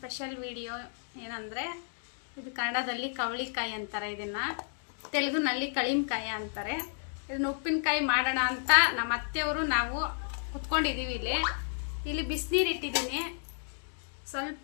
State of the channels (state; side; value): silent; right; digital silence